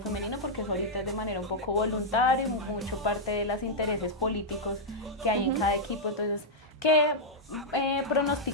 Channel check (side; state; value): both; normal; correlation -0.05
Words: porque eso ahorita es de manera un poco voluntaria, mucho parte de los intereses políticos que hay en cada equipo? Entonces, ¿qué